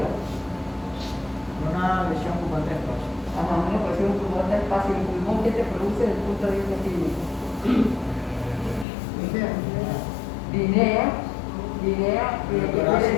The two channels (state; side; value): drops out; right; at 8.8 s